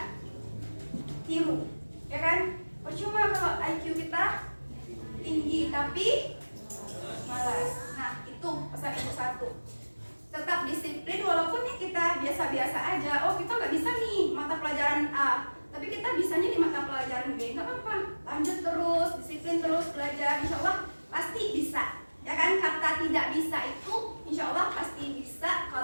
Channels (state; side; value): inverted; both; correlation -1.00